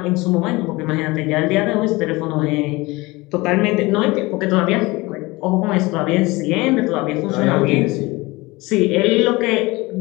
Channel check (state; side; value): quieter; right; 22.4 dB